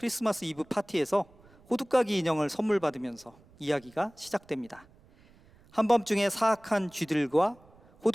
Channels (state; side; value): noise; right; rumble, 27 dB below the sound